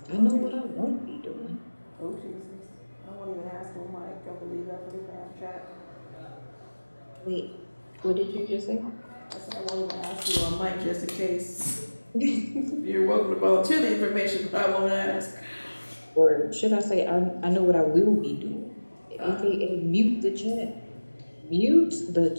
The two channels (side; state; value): both; inverted; correlation -1.00